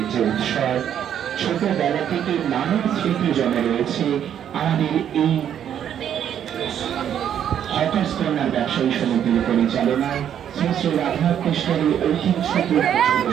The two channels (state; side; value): quieter; left; 9.6 dB